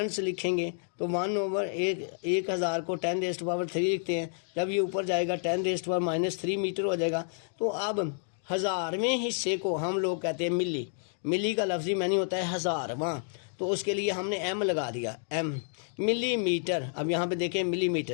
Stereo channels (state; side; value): silent; right; digital silence